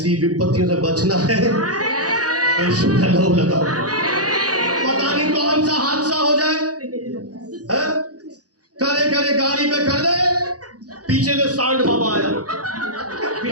विपत्तियों से बचना है, यीशु का नाम लगाओ। पता नहीं कौन सा हादसा हो जाए, है? करे करे गाड़ी पे कर दे, पीछे से सांड बाबा आया,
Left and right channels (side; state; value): left; late; 0.67 ms